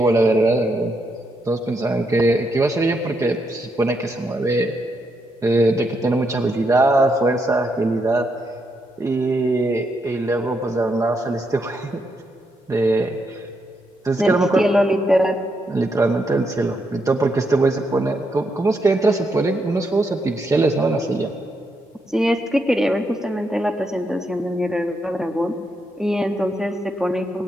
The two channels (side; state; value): both; normal; correlation 0.80